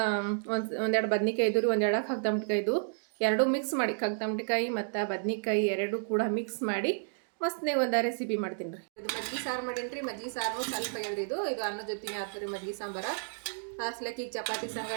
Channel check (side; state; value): left; silent; digital silence